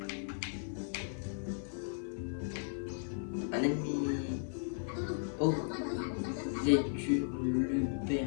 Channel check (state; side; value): silent; right; 54 dB below the other